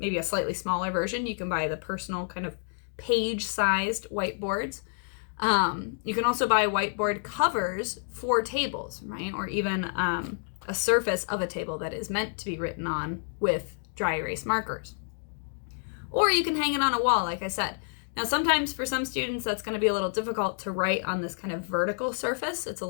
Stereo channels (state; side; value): silent; right; digital silence